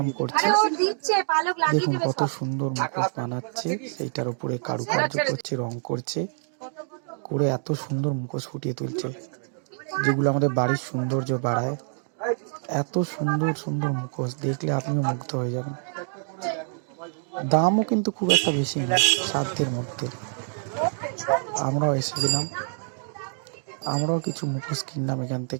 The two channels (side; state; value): left; silent; 61 dB below the other